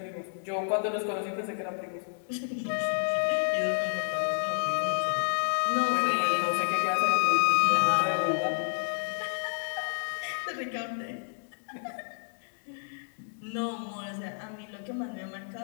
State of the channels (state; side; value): silent; right; digital silence